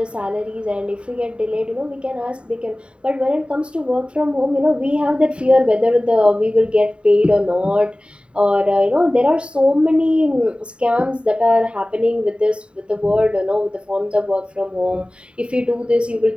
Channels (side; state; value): left; late; 0.055 ms